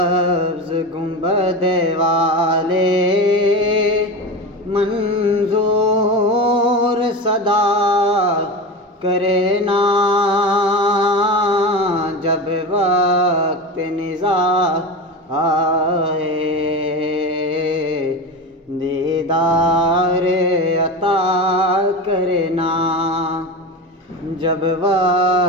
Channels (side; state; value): both; normal; correlation 0.25